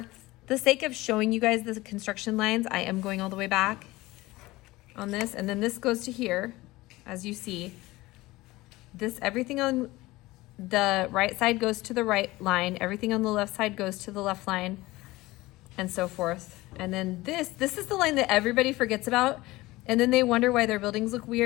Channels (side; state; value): right; quieter; 19.5 dB